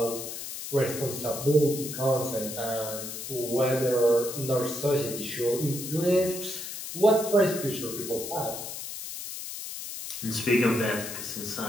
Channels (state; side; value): noise; left; hiss, 8 dB below the sound